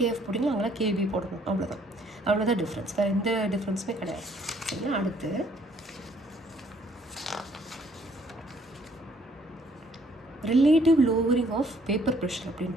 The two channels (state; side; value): normal; both; correlation 0.64